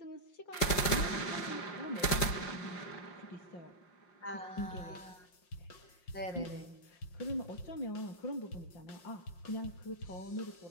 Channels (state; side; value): late; right; 5.6 ms